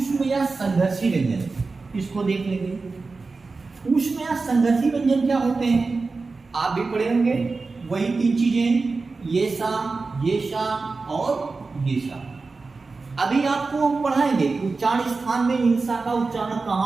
या संघर्षी व्यंजन, इसको देख लेंगे। ऊष्म या संघर्षी व्यंजन क्या होते हैं, आप भी पढ़े होंगे, वही 3 चीजें, ये सा और ये सा। अभी आपको हम पढ़ाएंगे उच्चारण स्थान में इंसा का उच्चारण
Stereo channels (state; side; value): quieter; left; 4.0 dB